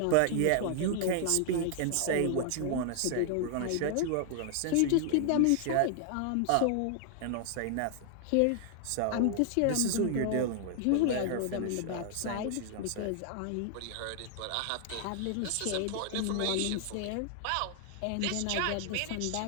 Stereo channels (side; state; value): both; different; correlation 0.00